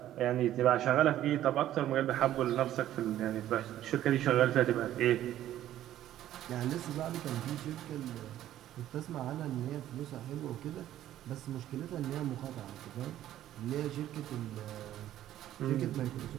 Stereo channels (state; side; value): quieter; left; 12.7 dB